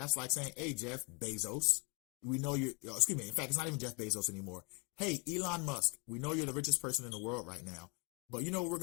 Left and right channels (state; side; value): quieter; right; 32.8 dB